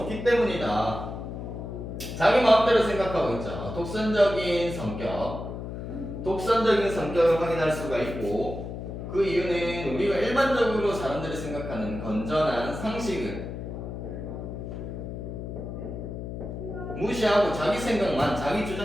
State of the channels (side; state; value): left; noise; hum, 7 dB below the sound